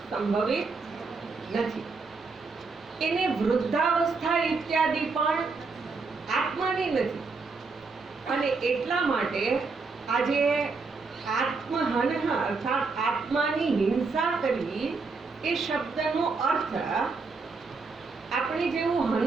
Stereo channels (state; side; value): quieter; left; 4.3 dB